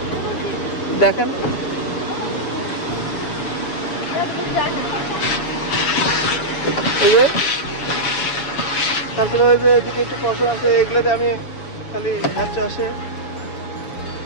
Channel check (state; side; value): late; right; 7.1 ms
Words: দেখেন এই যে তারপরে ওই যে এদিকে একটু পশম আছে, এগুলোতে আমি খালি হাত আসে।